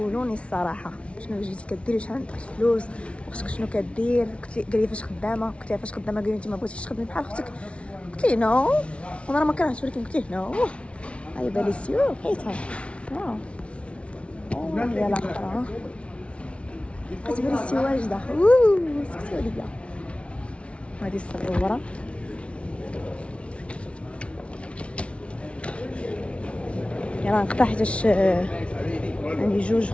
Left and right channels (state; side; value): late; right; 0.061 ms